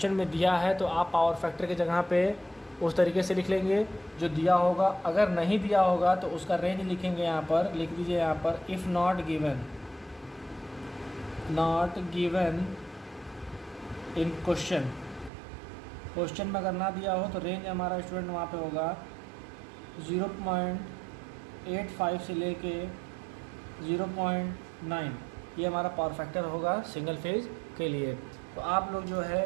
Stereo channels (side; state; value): left; drops out; at 15.3 s